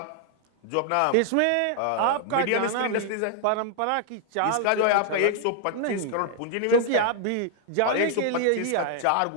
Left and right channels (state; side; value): different; both; correlation 0.00